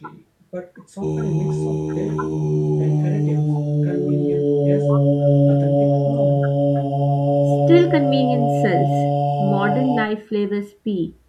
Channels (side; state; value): both; identical; correlation 1.00